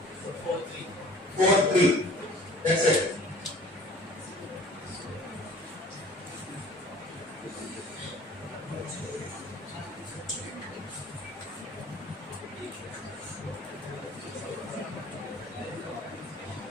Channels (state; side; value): normal; both; correlation 0.48